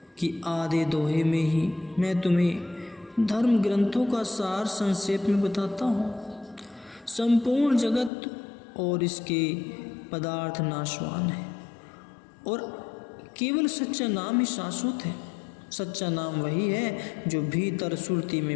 कि आधे दोहे में ही मैं तुम्हें धर्म ग्रंथों का सार संक्षेप में बताता हूँ। संपूर्ण जगत और इसके पदार्थ नाशवान है और केवल सच्चा नाम ही शाश्वत है। सच्चा नाम वही है जो भीतर सुरती में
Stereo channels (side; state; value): right; drops out; at 8.1 s